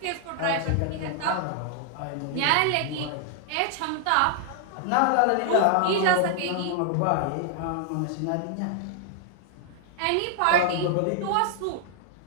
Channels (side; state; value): both; different; correlation -0.01